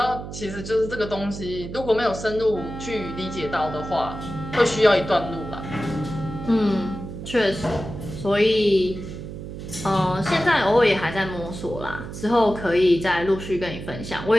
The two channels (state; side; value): noise; right; hum, 10 dB below the sound